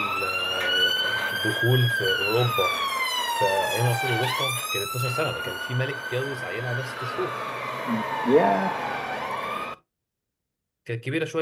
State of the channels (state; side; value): identical; both; correlation 1.00